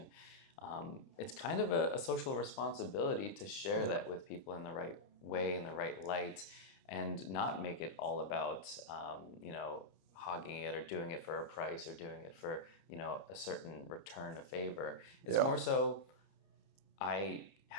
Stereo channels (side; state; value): right; late; 30 ms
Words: it's kind of a social responsibility to share that with people in the right way, in the right light, and not make it all about, hogging it or doing it for a price or doing it for, a certain return of favor. It's more so, I